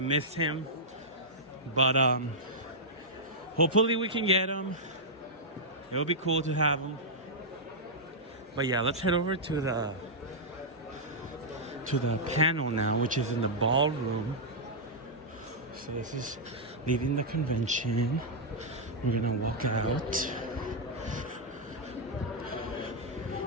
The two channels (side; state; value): both; normal; correlation -0.08